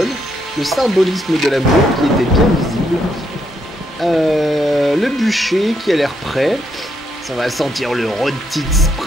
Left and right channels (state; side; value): normal; both; correlation 0.77